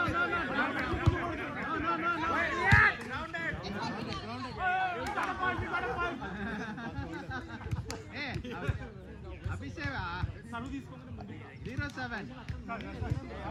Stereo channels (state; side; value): identical; both; correlation 1.00